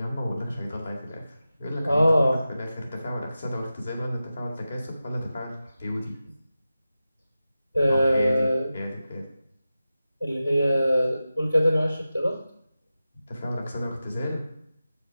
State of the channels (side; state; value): both; inverted; correlation -0.93